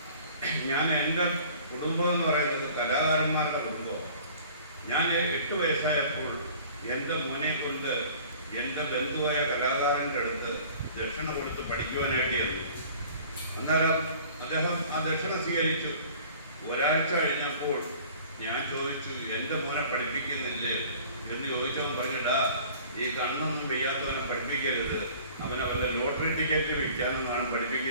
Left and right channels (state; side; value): inverted; both; correlation -0.48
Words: ഞാൻ. എൻ്റെ കുടുംബം എന്ന് പറയുന്നത് കലാകാരന്മാരുടെ കുടുംബമാണ്. ഞാൻ 8 വയസ്സായപ്പോൾ എൻ്റെ മോനെ കൊണ്ട് എൻ്റെ ബന്ധുവായ കലാകാരൻ്റെ അടുത്ത് ദക്ഷിണ കൊടുത്ത് പഠിക്കുവാനായിട്ടായിരുന്നു. അന്നേരം അദ്ദേഹം ആ ദക്ഷിണ സ്വീകരിച്ചു. ഒരാഴ്ച കഴിഞ്ഞപ്പോൾ ഞാൻ ചോദിച്ചു, എൻ്റെ മോനെ പഠിപ്പിക്കുന്നില്ലേ എന്ന് ചോദിച്ചവൻ പറഞ്ഞിട്ടാ, ഈ കണ്ണൊന്നും വയ്യാത്തവനെ പഠിപ്പിക്കരുത്, അവനെ വല്ല ലോട്ടറി ടിക്കറ്റ് വിൽക്കാനെന്നാണ്